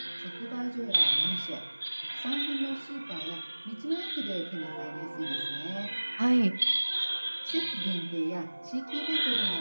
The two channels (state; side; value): inverted; both; correlation -1.00